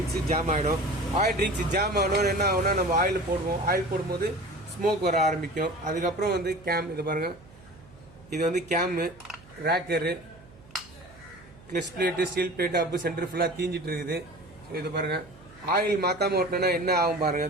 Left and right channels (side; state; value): right; noise; hum, 23 dB below the sound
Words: ஜாம் ஆகிடும். ஆயில் ரிங்ஸ் ஜாம் ஆகணும்னு என்ன ஆகுனா, நம்ம ஆயில் போடுவோம். ஆயில் போடும்போது ஸ்மோக் வர ஆரம்பிக்கும். அதுக்கப்புறம் வந்து கேம், இது பாருங்கள், இது வந்து cam, rocker, clutch plate, steel plate, அப்பு சென்டர் ஃபுல்லாக தீஞ்சிட்டு இருக்குது. ஸோ இது பாருங்கள், ஆயில் மாற்றாமல் ஓட்டினோன்னா என்ன ஆகும் பாருங்கள்.